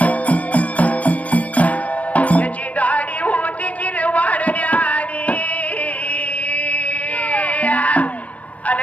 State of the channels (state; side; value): late; right; 0.067 ms